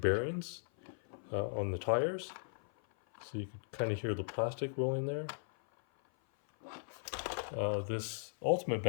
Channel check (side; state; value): right; silent; 53 dB below the other